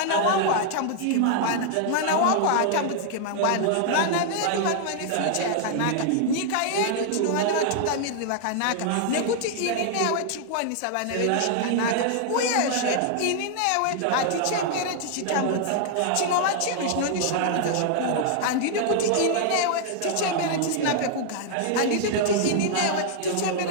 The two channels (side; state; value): both; different; correlation -0.01